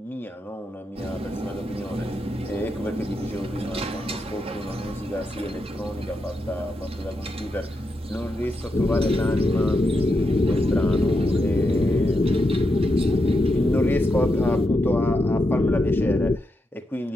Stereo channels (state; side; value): normal; both; correlation 0.84